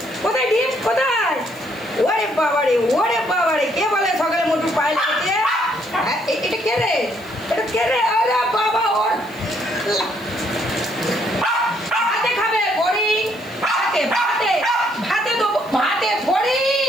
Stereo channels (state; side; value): noise; right; hiss, 26 dB below the sound